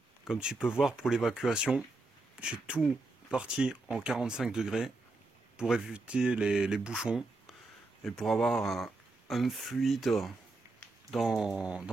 Comme tu peux voir pour l'évacuation, j'ai tout parti en 45 degrés pour éviter les bouchons et pour avoir un fluide dans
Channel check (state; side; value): quieter; left; 3.1 dB